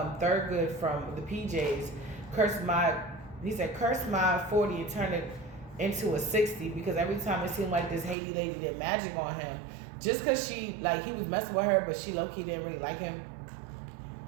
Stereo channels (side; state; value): left; drops out; at 8.2 s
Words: from the PJs. He said, curse my 40 and turn it into a 60, because every time it seemed like this Haiti lady did magic on him, just because he was messing with her, but she low-key didn't really like him.